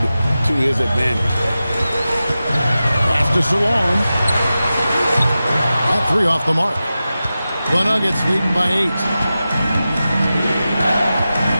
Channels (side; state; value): both; inverted; correlation -0.94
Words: to his advantage. Pass to Salon. At 3 off the mark. The Nuggets leading by 8.